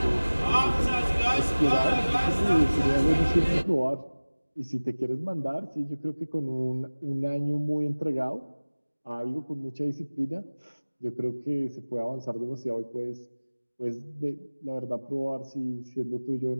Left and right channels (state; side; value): inverted; both; correlation -1.00